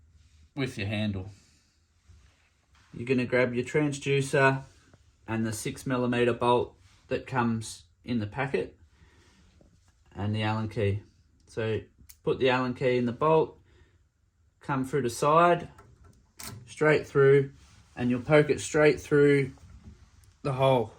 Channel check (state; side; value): identical; both; correlation 1.00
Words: with your handle. You're going to grab your transducer and the 6mm bolt that comes in the packet and the Allen key. So put the Allen key in the bolt, come through the side, straight through, and you'll poke it straight through the hole